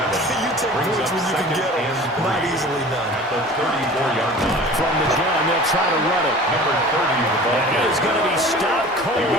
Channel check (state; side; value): normal; both; correlation 0.42